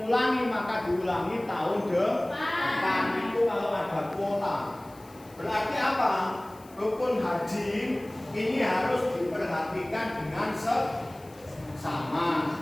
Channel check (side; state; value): left; noise; hiss, 25 dB below the sound